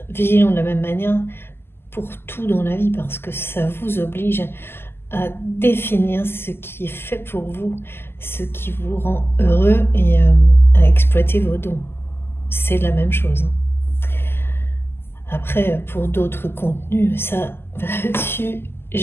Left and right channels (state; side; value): late; right; 0.11 ms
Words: vigilant de la même manière pour tout dans la vie, parce que ça vous oblige à définir ce qui est fait pour vous, ce qui vous rend heureux et à exploiter vos dons. C'est la même chose. Après, pour d'autres contenus, ça, là-dessus,